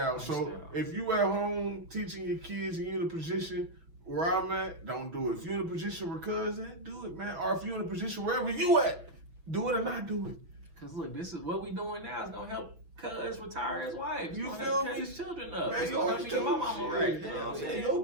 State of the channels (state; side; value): late; left; 6.1 ms